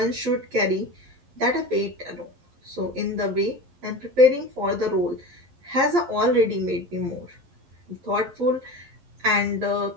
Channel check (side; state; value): left; late; 11 ms